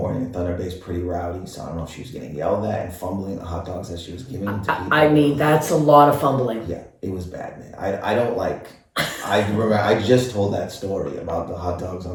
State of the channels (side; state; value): both; identical; correlation 1.00